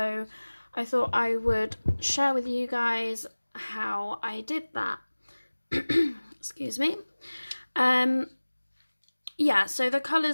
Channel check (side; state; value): both; inverted; correlation -1.00